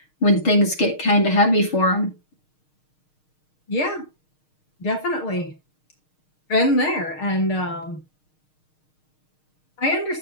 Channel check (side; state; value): right; late; 6.5 ms